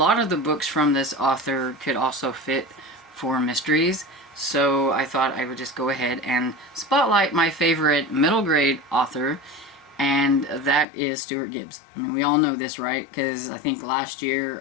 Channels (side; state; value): right; drops out; at 10.9 s